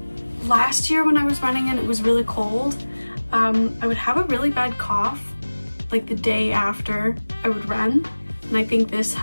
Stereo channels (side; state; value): both; inverted; correlation -1.00